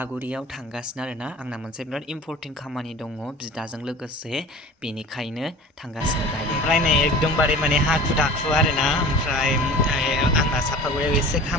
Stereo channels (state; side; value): normal; both; correlation 0.40